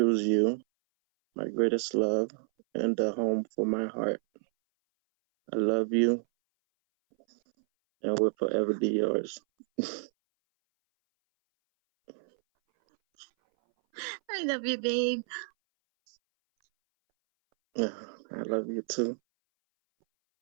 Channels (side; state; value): left; silent; 58 dB below the other